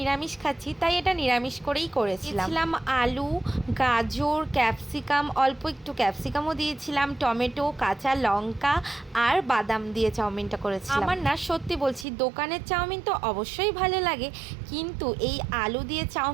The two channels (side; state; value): left; drops out; at 12.1 s